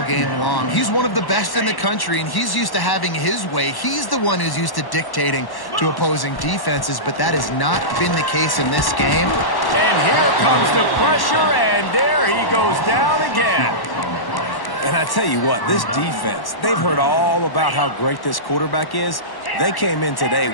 game long. He's one of the best in the country, and he's used to having his way. He's the one who's used to dictating to opposing defenses, but that has not been the case in this game. And here comes the pressure, and there he goes down again. And I tell you what, this defense, they've heard all about how great this quarterback is. They came in today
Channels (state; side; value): late; right; 1.1 ms